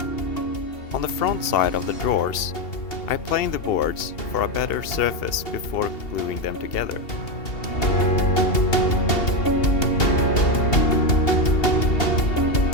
On the front side of the drawers, I planed the boards for a better surface before gluing them together.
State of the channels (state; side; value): late; right; 2.8 ms